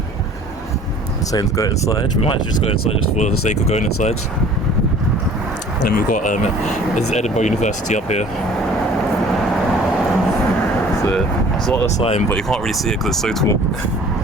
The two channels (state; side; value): normal; both; correlation 0.50